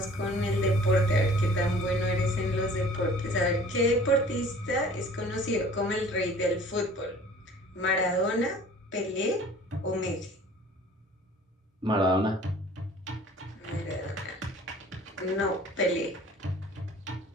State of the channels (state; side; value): normal; both; correlation 0.49